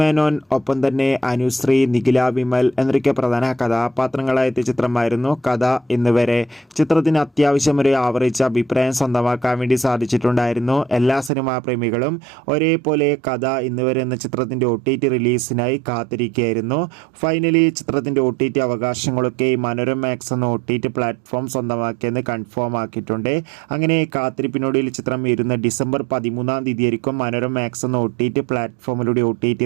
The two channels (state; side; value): drops out; left; at 11.3 s